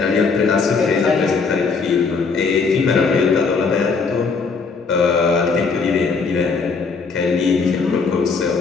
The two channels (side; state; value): right; quieter; 4.8 dB